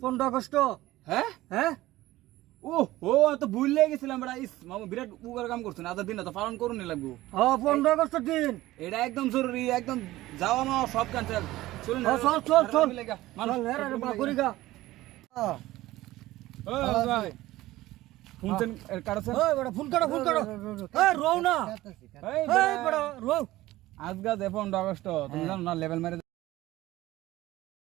15 আগস্ট হ্যাঁ হ্যাঁ ও ও তো ভুলে গেছিলাম বড় ইস মামু বিরাট উপকার কাম করছেন আজ দিন তো পালন করুন লাগবো হ্যাঁ 15 আগস্টের দিন এটা একদম জরুরি একদম যাওয়া মা সব ক্যান্সেল চলুন চল চল চল চল রে বা করি গা ভাই ফোন কাটছেন এই বড় ফোন করো এই রও না এই বড় রও আজ গা 15 আগস্ট তুমি জানো না লেভেল মেরে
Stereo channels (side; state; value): left; quieter; 16.9 dB